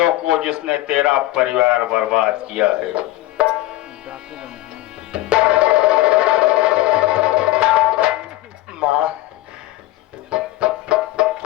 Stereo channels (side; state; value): right; quieter; 16.8 dB